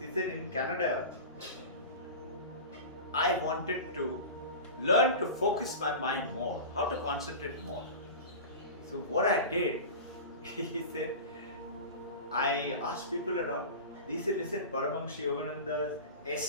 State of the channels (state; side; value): inverted; both; correlation -0.30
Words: said, in Canada, I wanted to learn to focus my mind more, how to concentrate more. So what I did, he said, I asked people around. They said, listen, Paramahansa Yogananda's